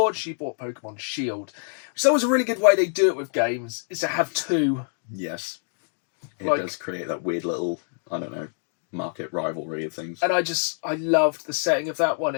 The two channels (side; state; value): right; silent; 61 dB below the other